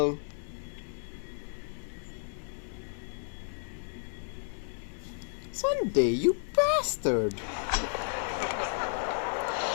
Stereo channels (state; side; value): silent; right; 56 dB below the other